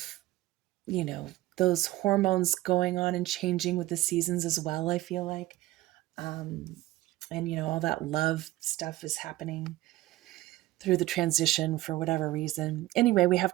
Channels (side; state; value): left; quieter; 17.0 dB